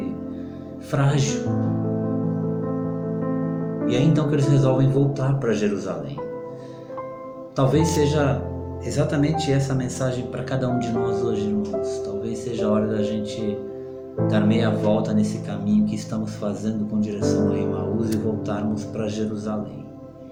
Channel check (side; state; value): both; identical; correlation 1.00